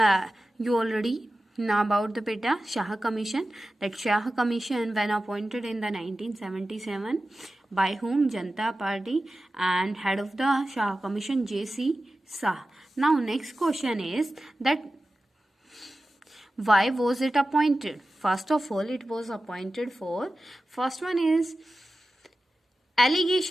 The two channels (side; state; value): both; normal; correlation 0.94